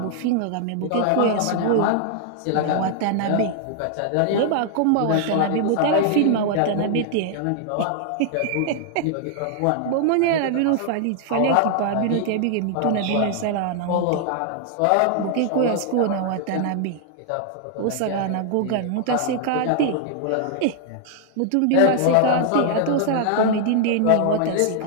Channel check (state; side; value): different; both; correlation 0.00